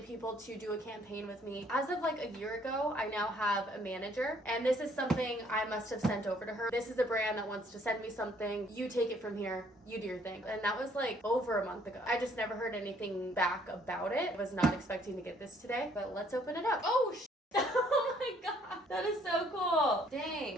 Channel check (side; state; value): both; normal; correlation 0.63